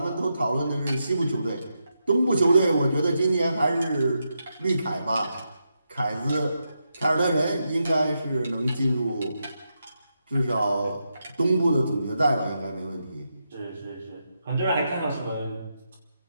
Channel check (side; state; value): both; inverted; correlation -0.85